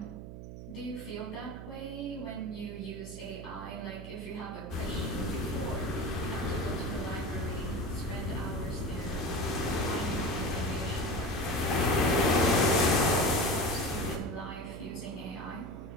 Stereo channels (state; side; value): noise; right; hum, 11 dB below the sound